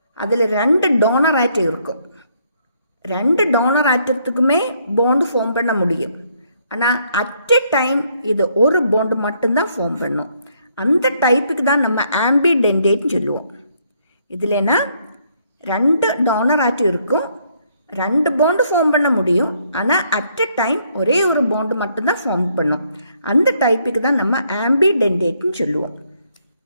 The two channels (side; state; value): both; inverted; correlation -0.70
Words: அதில் 2 டோனர் ஆட்டம் இருக்கும். 2 டோனர் ஆட்டத்துக்குமே பாண்டு ஃபார்ம் பண்ண முடியும். ஆனால் அட் எ டைம் இது ஒரு பாண்டு மட்டும்தான் ஃபார்ம் பண்ணும். அந்த டைப்புக்கு தான் நம்ம ஆம்பிடென்டேட்னு சொல்லுவோம். இதுலனா 2 டோனர் ஆட்டம் இருக்கும், 2 பாண்டு ஃபார்ம் பண்ண முடியும். ஆனால் அட் எ டைம் ஒரே ஒரு பாண்டு மட்டும்தான் ஃபார்ம் பண்ணும். அந்த டைப்புக்கு தான் நம்ம ஆம்பிடென்டேட்னு சொல்லுவோம்.